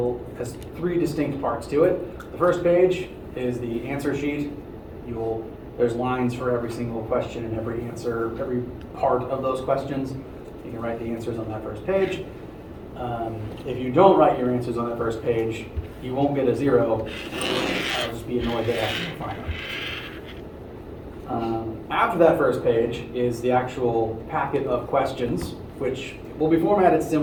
has three distinct parts to it. The first page is the answer sheet. There's lines for every single question and every answer, every part of those questions. You can write the answers on that first page. If you don't write your answers on that first page, you won't get a 0. I'll just be annoyed that after you find them. After that first page is the actual packet of questions, which will be formatted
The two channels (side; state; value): both; identical; correlation 1.00